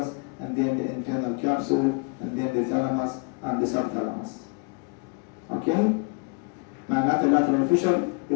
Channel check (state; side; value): quieter; right; 34.5 dB